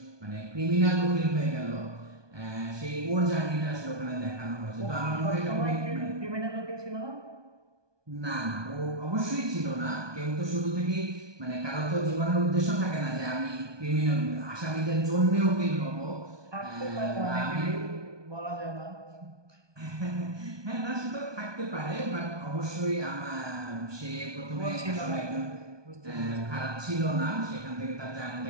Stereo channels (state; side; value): late; left; 1.2 ms